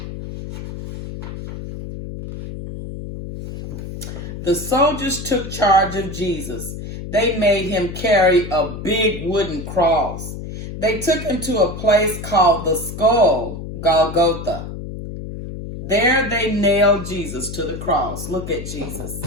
The soldiers took charge of Jesus. They made him carry a big wooden cross. They took him to a place called the Skull, Golgotha. There they nailed Jesus to the cross. Look at Jesus.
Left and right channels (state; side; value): noise; left; hum, 9 dB below the sound